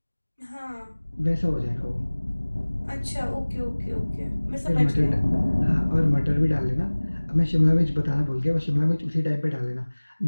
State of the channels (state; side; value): inverted; both; correlation -1.00